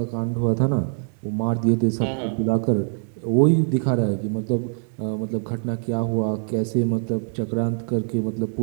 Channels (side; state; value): left; silent; 63 dB below the other